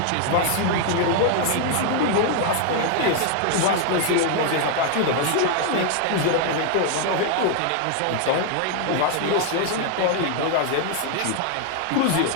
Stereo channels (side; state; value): both; different; correlation 0.00